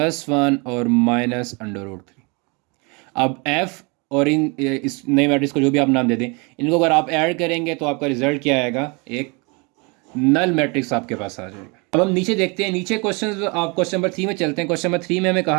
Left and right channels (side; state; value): left; quieter; 30.4 dB